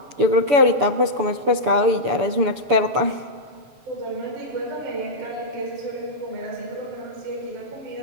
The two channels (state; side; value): late; left; 7.0 ms